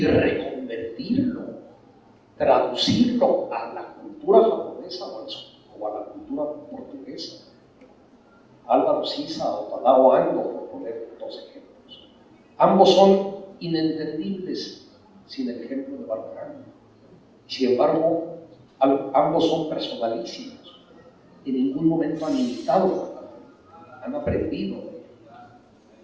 reconvertirlo, traducirlo a la cultura japonesa o a la cultura portuguesa. Álvaro Siza o Tadao Ando, por poner dos ejemplos. Ambos son inentendibles sin el ejemplo de Barragán. Sin embargo, ambos son personalísimos. En ningún momento han imitado Barragán, han aprendido.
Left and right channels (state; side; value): identical; both; correlation 1.00